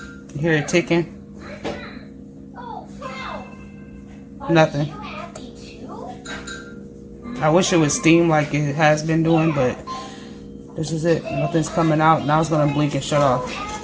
hear it ticking? Nothing. I wish it would steam like it has been doing, but this is it. Nothing's coming out. Now it's gonna blink and shut off.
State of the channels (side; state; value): both; identical; correlation 1.00